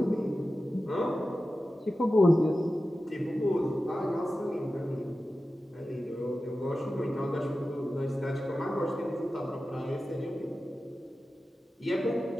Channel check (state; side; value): normal; both; correlation 0.94